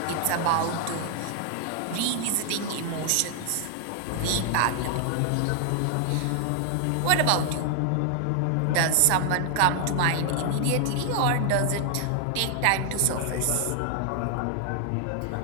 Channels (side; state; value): both; different; correlation 0.00